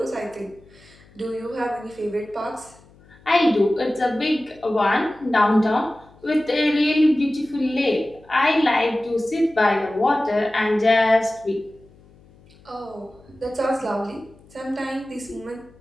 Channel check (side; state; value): left; noise; hum, 27 dB below the sound